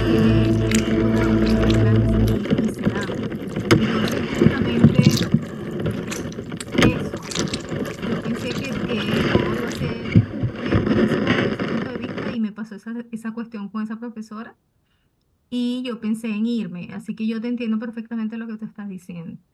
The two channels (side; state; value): both; identical; correlation 1.00